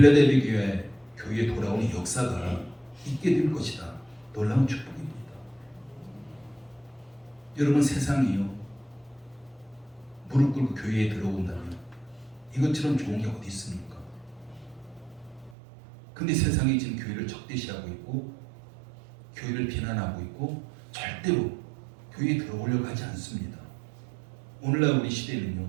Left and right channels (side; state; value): left; drops out; at 15.6 s